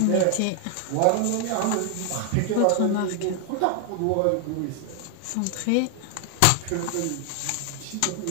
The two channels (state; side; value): different; both; correlation 0.00